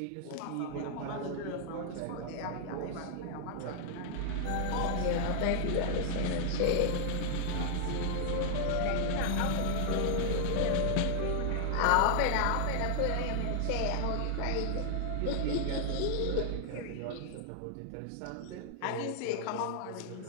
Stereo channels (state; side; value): different; both; correlation 0.00